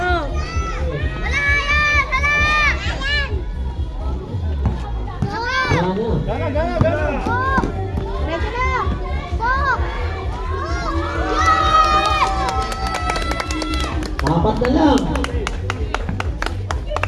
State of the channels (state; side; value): identical; both; correlation 1.00